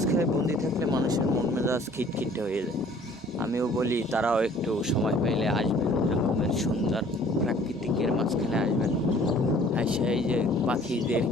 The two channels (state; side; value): normal; both; correlation 0.54